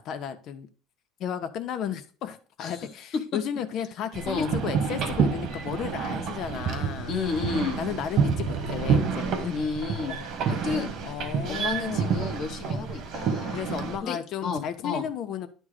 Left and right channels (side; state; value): both; normal; correlation 0.50